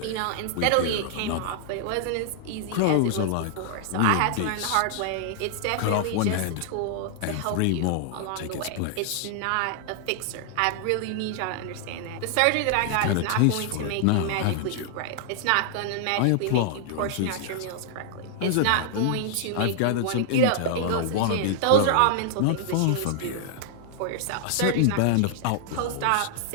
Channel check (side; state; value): both; different; correlation -0.01